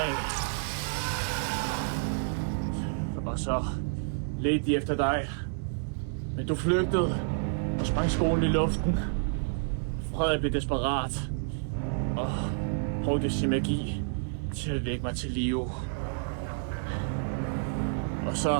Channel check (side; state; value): left; silent; digital silence